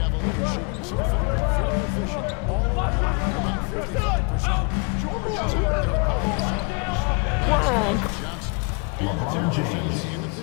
shooting so far very efficient. All around, about 55%. George is out there at Paul Johnson. LeBron James. In the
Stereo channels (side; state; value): right; quieter; 32.8 dB